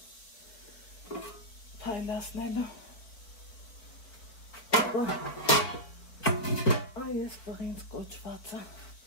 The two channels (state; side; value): late; right; 4.5 ms